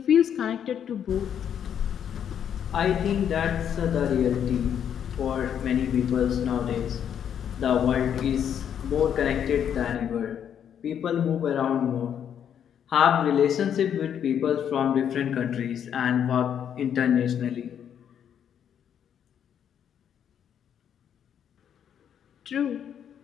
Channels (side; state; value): right; quieter; 8.8 dB